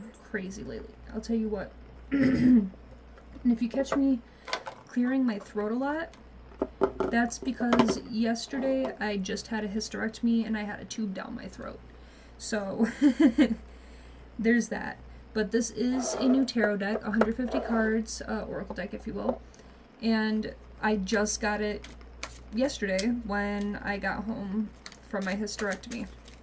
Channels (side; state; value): both; identical; correlation 1.00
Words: crazy lately, I'll tell you what. And if you catch me clearing my throat a lot, that's because yesterday I just had a hysterectomy and I had a tube down my throat. So, there's that. But this is a new tarot deck, 150 cards, oracle deck if you will. And I just got it yesterday when I got home from my hysterectomy.